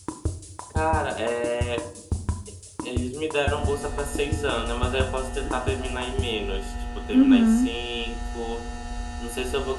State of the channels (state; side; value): identical; both; correlation 1.00